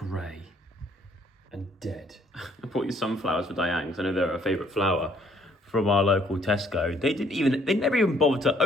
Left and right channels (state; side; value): normal; both; correlation 0.64